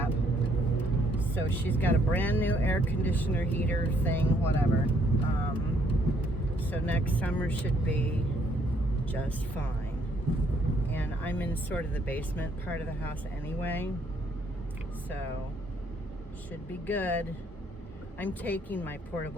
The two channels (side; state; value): both; normal; correlation 0.68